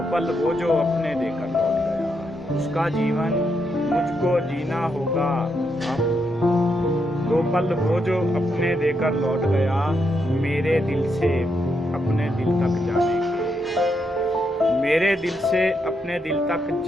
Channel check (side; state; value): both; normal; correlation 0.80